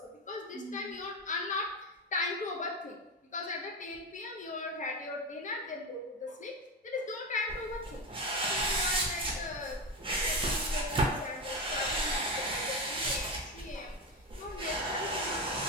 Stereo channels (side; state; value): both; normal; correlation 0.17